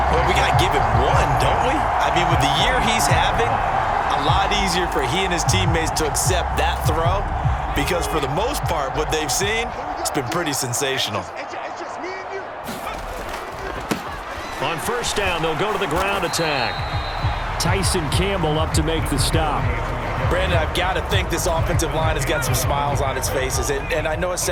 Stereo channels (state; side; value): identical; both; correlation 1.00